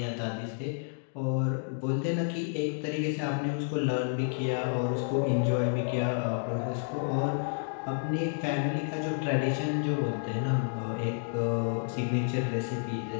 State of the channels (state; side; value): silent; right; digital silence